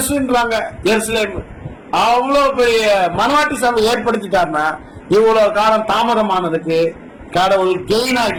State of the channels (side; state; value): both; identical; correlation 1.00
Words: எருசலேம். அவ்வளவு பெரிய மனவாட்டி சபை ஏற்படுத்திட்டாருன்னா இவ்வளவு காலம் தாமதமானதுக்கு கடவுள் கெயின்